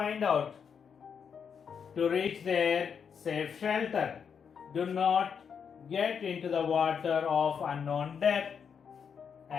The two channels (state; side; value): quieter; right; 6.9 dB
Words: out to reach their safe shelter. Do not get into the water of unknown depth